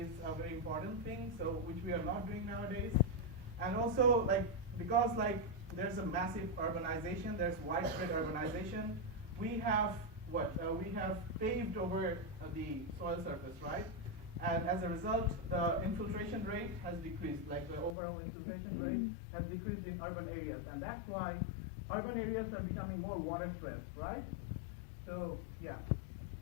a very important thing, so which we are not doing nowadays. And also like because like there's a massive urbanization, there's widespread urbanization, we have we have paved over the soil surface, right? And as a result, the infiltration rate has decreased, like the overall infiltration rate has decreased in urban areas. And that's why urban areas are becoming more water stressed, right? So, yeah,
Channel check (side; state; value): right; drops out; at 17.9 s